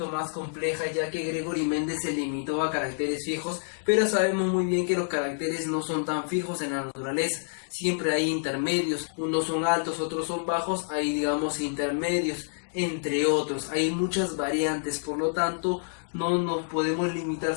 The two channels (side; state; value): right; silent; digital silence